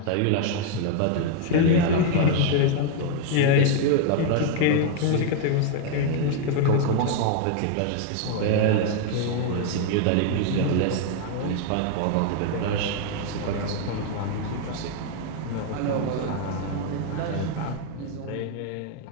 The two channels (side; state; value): both; different; correlation 0.00